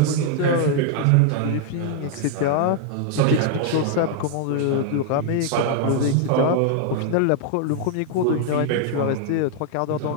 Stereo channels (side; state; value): both; different; correlation 0.00